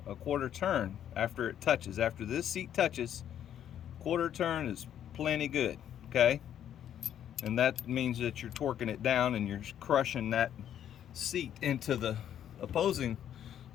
a quarter turn after it touches. After this seat touches, quarter turn is plenty good, okay? And that means that you're torquing it down and you're crushing that seat into the opposing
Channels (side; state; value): right; quieter; 10.2 dB